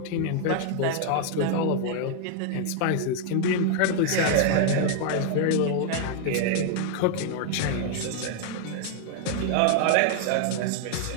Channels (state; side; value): different; both; correlation 0.00